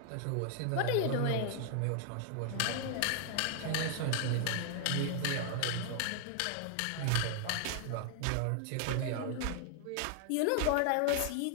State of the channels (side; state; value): both; different; correlation 0.00